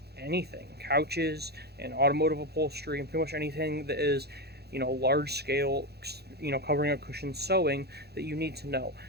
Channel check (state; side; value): late; left; 0.47 ms